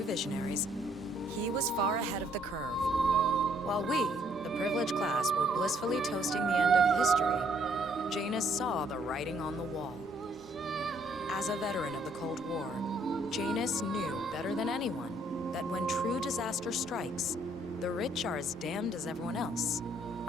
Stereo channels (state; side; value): normal; both; correlation 0.66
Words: visionaries, he was far ahead of the curve. While we, the privileged class, were blissfully toasting the end of history, Janus saw the writing on the wall. As a veteran of the Cold War, Janus knew better than anyone that when true disaster strikes, the rich are as damned as everyone else,